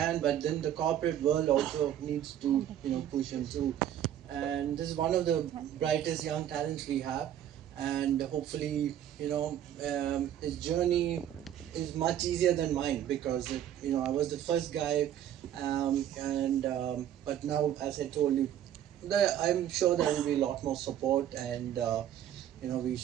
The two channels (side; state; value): left; quieter; 10.9 dB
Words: but then the corporate world also needs to push him through. And this is one of the brightest young talents we have. And hopefully his journey is much easier than mine, because I was the first guy. And but now, as I told you, I'm sure there will be a lot more support. And we